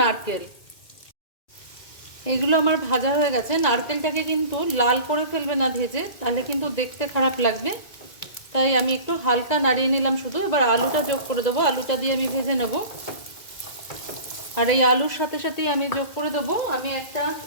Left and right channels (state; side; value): late; right; 2.2 ms